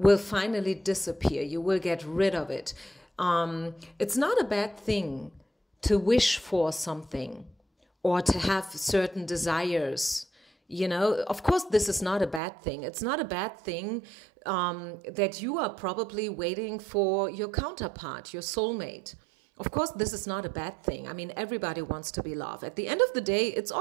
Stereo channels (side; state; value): left; drops out; at 12.4 s